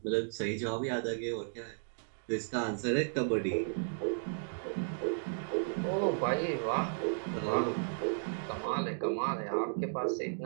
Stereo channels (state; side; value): silent; left; digital silence